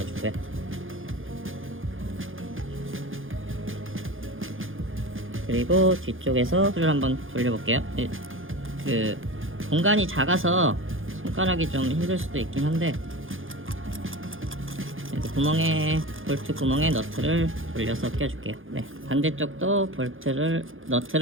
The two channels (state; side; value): late; left; 0.58 ms